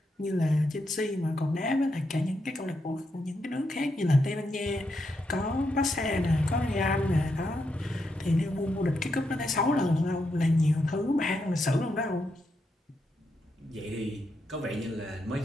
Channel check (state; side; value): normal; both; correlation 0.82